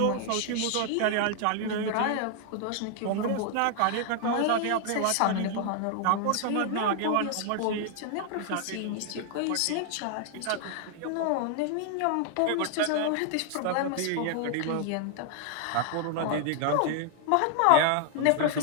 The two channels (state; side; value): different; both; correlation 0.00